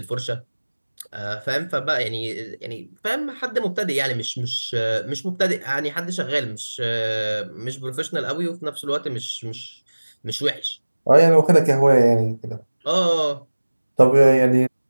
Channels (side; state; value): both; inverted; correlation -1.00